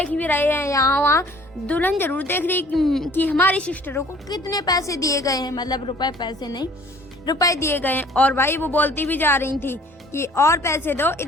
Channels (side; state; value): both; normal; correlation 0.53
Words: भी रहे हैं यहाँ वहाँ। दुल्हन जरूर देख रही कि हमारी सिस्टरों को कितने पैसे दिए गए हैं, मतलब रुपए, पैसे नहीं, रुपए दिए गए हैं। और भाई वो बोलती भी जा रही थी कि और पैसे दो,